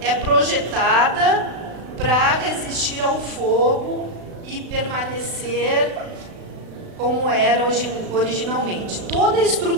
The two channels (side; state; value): left; late; 36 ms